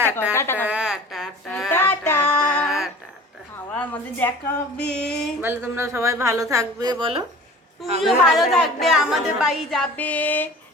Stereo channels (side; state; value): both; normal; correlation 0.43